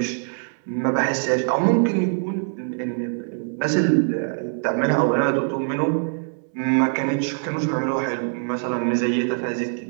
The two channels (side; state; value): left; silent; 63 dB below the other